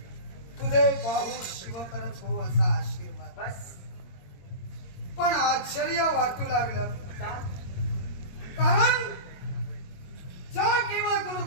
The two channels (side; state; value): right; late; 22 ms